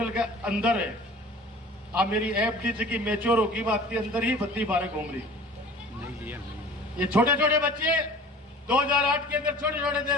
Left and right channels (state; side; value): normal; both; correlation 0.44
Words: के अंदर है। अब मेरी एफडी की मेच्योर होगी बात के अंदर ही बत्ती बारह घूम रही। ये छोटे छोटे बच्चे 2008 के अंदर छोटे छोटे थे।